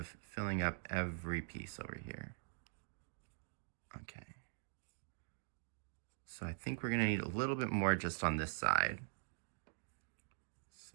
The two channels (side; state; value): left; silent; digital silence